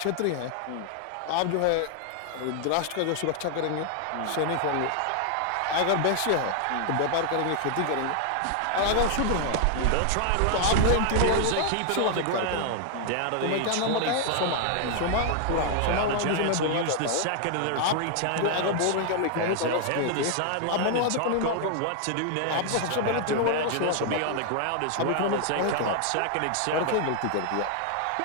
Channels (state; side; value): different; both; correlation 0.00